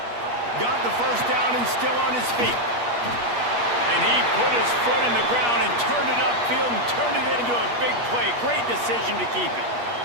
Got the first down and still on his feet. And he put his foot in the ground and turned it upfield and turned it into a big play. Great decision to keep it.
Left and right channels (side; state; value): left; late; 8.4 ms